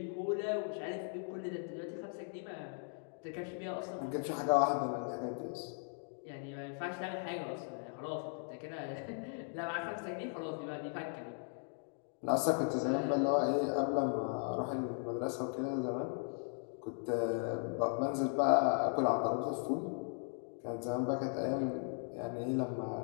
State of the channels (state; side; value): silent; right; 53 dB below the other